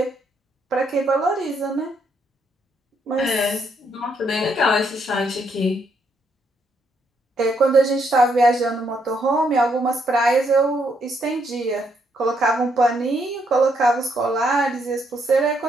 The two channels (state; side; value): normal; both; correlation 0.74